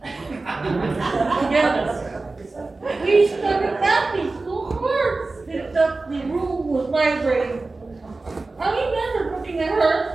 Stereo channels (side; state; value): left; quieter; 3.5 dB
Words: together. We started laughing so hard that the room was vibrating. I remember looking at